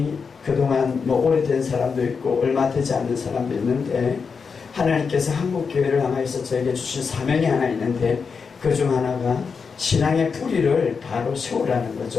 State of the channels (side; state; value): right; quieter; 5.5 dB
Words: 그동안 뭐 오래된 사람도 있고 얼마 되지 않는 사람도 있는데 하나님께서 한국교회를 향하여서 저에게 주신 사명이 하나 있는데 그 중 하나가 신앙의 뿌리를 바로 세우라는